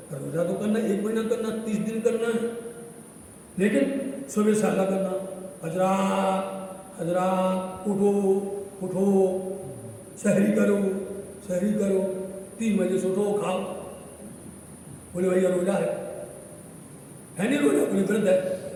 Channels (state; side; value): identical; both; correlation 1.00